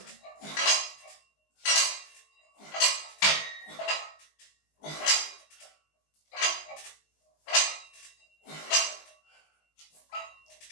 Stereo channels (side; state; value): right; late; 20 ms